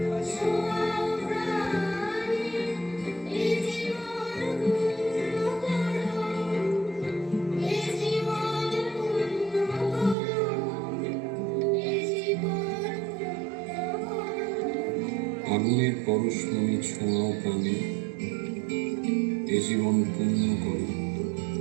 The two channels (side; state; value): left; drops out; at 10.2 s